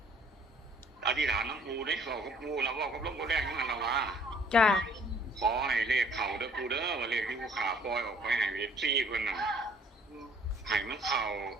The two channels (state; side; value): normal; both; correlation 0.58